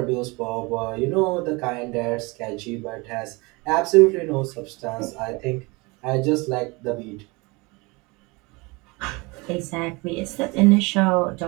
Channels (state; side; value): quieter; left; 26.1 dB